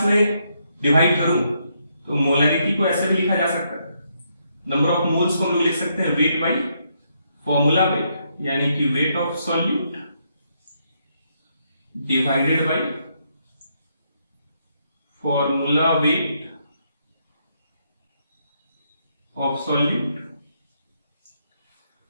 में डिवाइड करूं तो मोलैरिटी को ऐसे भी लिखा जा सकता है, नंबर ऑफ मोल्स को हम लोग लिख सकते हैं वेट बाई फॉर्मूला वेट, यानी कि wait of solute divided by formula weight of solute.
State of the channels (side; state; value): both; inverted; correlation -0.76